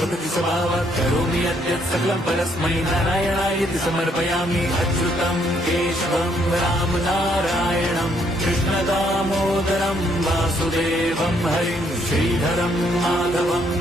स्वभावात् करोमि यद्यत् सकलं परस्मै नारायणायति समर्पयामि। अच्युतं केशवं राम नारायणं कृष्णदामोदरं वासुदेवं हरिं श्रीधरं माधवं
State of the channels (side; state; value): both; normal; correlation 0.70